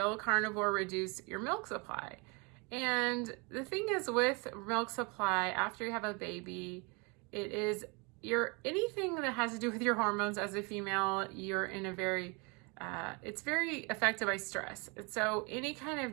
carnivore reduce your milk supply? And the thing is with milk supply, after you have a baby, it is anything that has to do with your hormones as a female, you're in a very, it's very affected by stress. And so any kind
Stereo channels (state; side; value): quieter; left; 30.4 dB